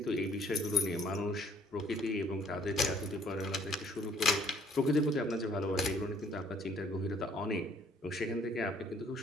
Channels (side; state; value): both; normal; correlation 0.60